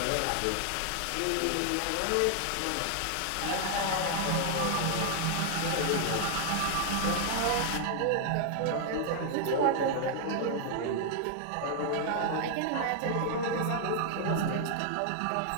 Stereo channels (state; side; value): different; both; correlation 0.00